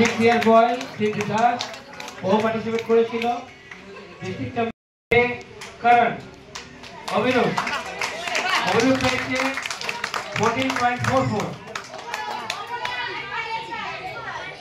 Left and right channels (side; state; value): both; identical; correlation 1.00